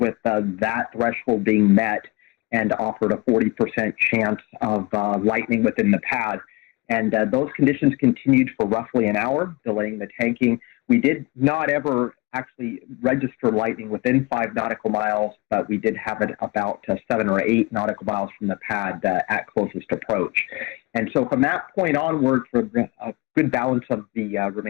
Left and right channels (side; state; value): right; quieter; 24.6 dB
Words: that threshold being met and offered a 40% chance of lightning within the pad. And those conditions continued for roughly an hour, delaying the tanking. We did not ever actually register lightning within 5 nautical miles, but we did have it about 7 or 8 nautical miles from the pad at closest approach. And so from that point onward, for a good balance of the